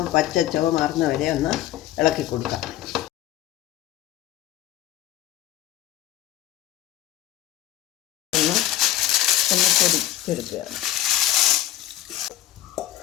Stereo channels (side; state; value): right; quieter; 13.2 dB